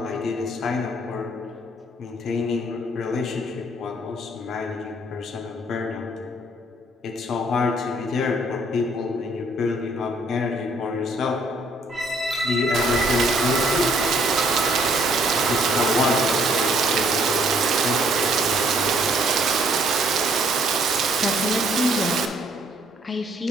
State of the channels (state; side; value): normal; both; correlation 0.65